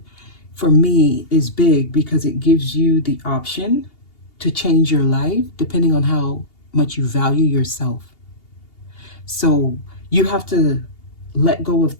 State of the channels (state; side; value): late; right; 2.8 ms